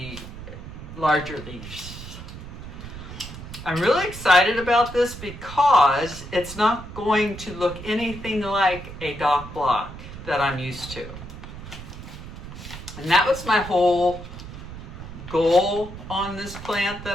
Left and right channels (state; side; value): noise; right; rumble, 12 dB below the sound